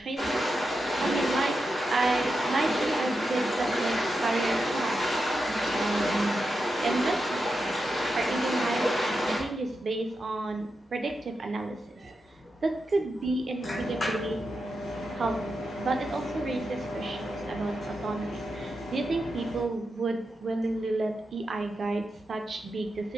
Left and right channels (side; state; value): both; normal; correlation 0.88